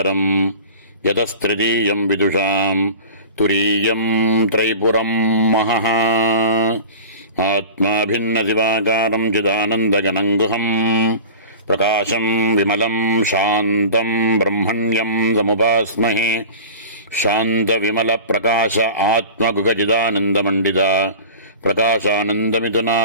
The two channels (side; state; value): both; inverted; correlation -0.36